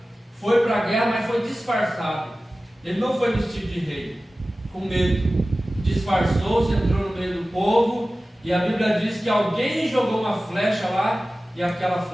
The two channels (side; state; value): both; normal; correlation 0.96